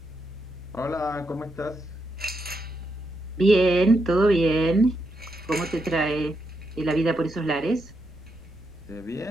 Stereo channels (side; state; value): right; noise; rumble, 24 dB below the sound